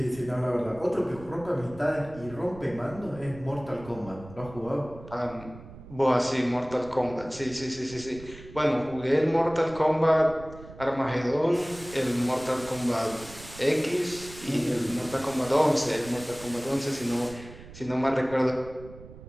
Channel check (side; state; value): right; noise; rumble, 17 dB below the sound